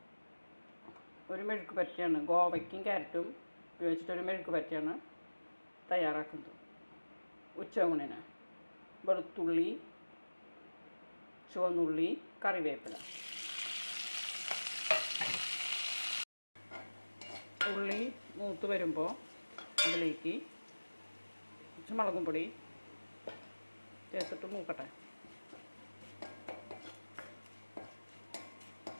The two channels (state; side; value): inverted; both; correlation -1.00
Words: ഒരു മെഴുക്ക് പറ്റിയാണ്, ഗോവയ്ക്കും ക്യാരറ്റും ഉപയോഗിച്ചിട്ടൊരു മെഴുക്ക് പറ്റിയാണ് തയ്യാറാക്കുന്നത്. ഉച്ചയൂണിന് വെളുത്തുള്ളി, ചുവന്നുള്ളി, കറിവേപ്പില. ഉള്ളി മൂത്ത് വരുമ്പോൾ അതിലേക്ക് കുറച്ച് മുളകും പൊടി ചേർത്തിട്ട് മൂക്കട്ടെ.